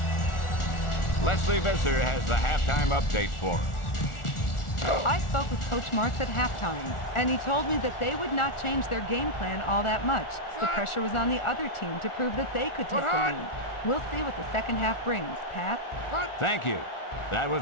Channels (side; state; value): right; late; 1.4 ms